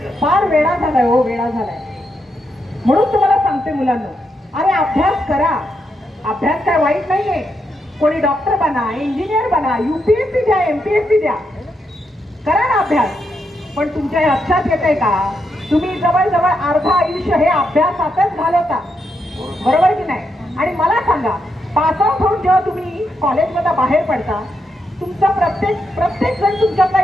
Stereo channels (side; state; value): both; normal; correlation 0.82